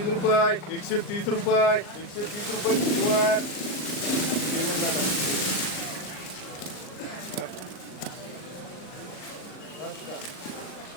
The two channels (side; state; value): right; late; 38 ms